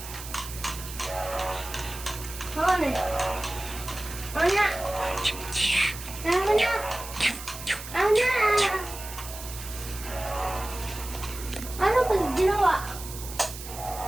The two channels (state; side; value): noise; right; hiss, 12 dB below the sound